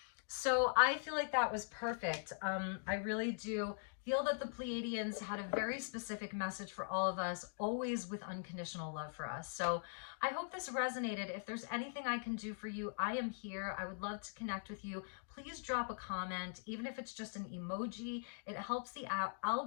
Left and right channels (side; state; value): right; silent; digital silence